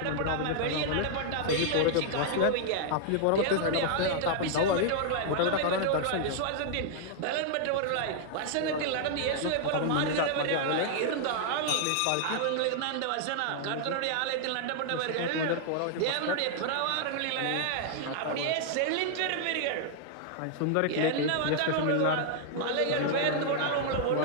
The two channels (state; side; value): different; both; correlation -0.01